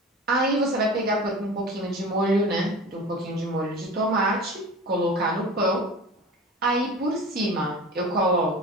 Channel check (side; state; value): both; normal; correlation 0.35